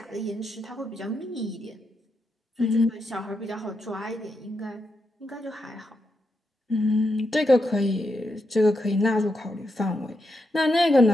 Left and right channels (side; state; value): both; normal; correlation 0.84